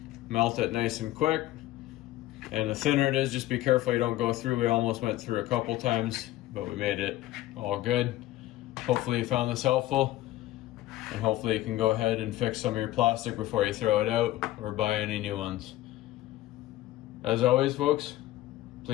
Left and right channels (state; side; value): quieter; right; 15.6 dB